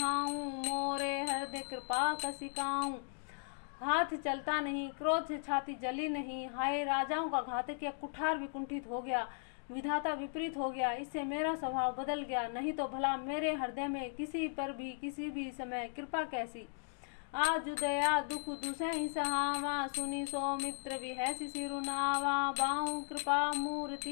मोरे हृदय कृपा कसिकाऊ। हाथ चलता नहीं, क्रोध से छाती जली नहीं, हाय राजाओं का घातक या कुठार भी कुंठित हो गया, विधाता विपरीत हो गया, इससे मेरा स्वभाव बदल गया। नहीं तो भला मेरे हृदय में किसी पर भी किसी भी समय कृपा कैसी। आज दया दुख दुसहि सहावा, सुनी सौमित्र विहसि सिरुनावा, बाहु कृपा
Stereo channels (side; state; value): right; silent; digital silence